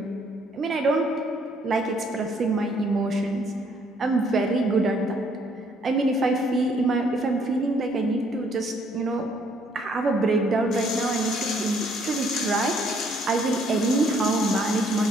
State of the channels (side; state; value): both; normal; correlation 0.65